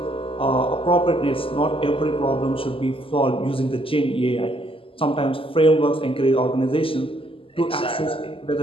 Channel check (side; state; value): right; late; 0.26 ms